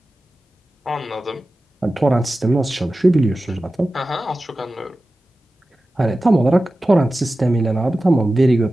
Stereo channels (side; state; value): both; normal; correlation 0.95